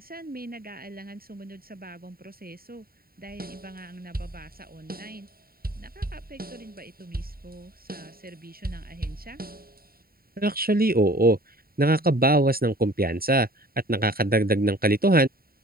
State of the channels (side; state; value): left; late; 0.43 ms